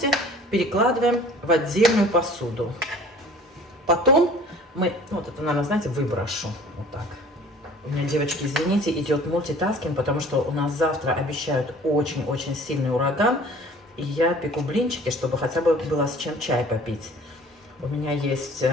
перекладываем в отдельную посуду. Потом мы, вот это, наверное, знаете, выброшу. Вот так. У меня, девочки, извините, идет мультитаскинг, потому что у нас завтра обещают очень-очень сильный ураган. И я пеку блинчики, чтобы хотя бы было с чем чай попить. У меня есть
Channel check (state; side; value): normal; both; correlation 0.48